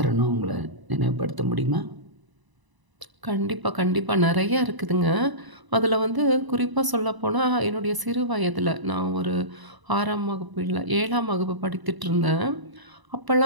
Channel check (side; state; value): left; late; 1.0 ms